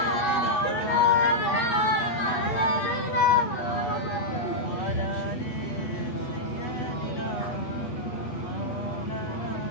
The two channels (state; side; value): late; right; 8.6 ms